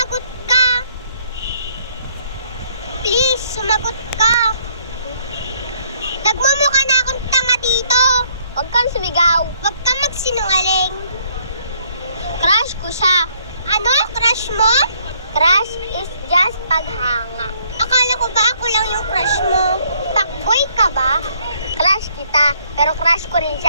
ka! Please, sumagot ka! Nagmumukha na akong tanga dito! Huwag kang sumigaw. Huwag ka magsinungaling! Crush ko siya. Ano? Crush mo? Crush is just paghanga. Akala ko ba ako lang yung crush mo? Fuckboy ka ba? Crush kita, pero crush ko rin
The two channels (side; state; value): both; inverted; correlation -0.66